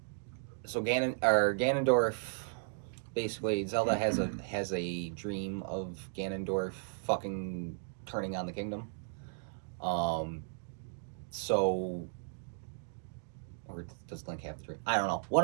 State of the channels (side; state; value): left; silent; digital silence